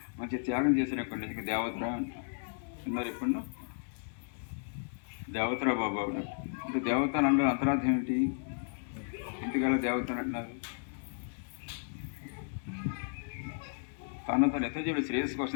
మంచి త్యాగం చేసినప్పుడు ఇంకా దేవతరా ఉన్నారు, ఎప్పుడన్నా దేవతరా బాబు అంటే దేవత అని అన్నారు. అంతరార్థం ఏంటి? ఎందుకలా దేవత అని అంటున్నారు? తన ఇతరుల శ్రేయస్సు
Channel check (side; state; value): right; silent; digital silence